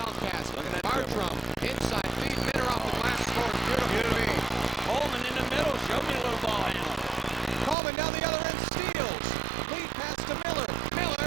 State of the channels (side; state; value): left; drops out; at 7.8 s